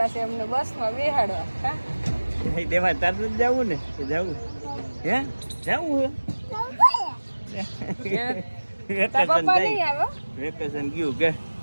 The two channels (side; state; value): both; inverted; correlation -1.00